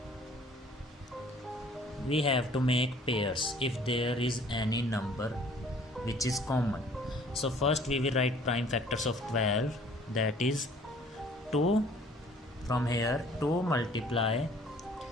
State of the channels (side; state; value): both; normal; correlation 0.55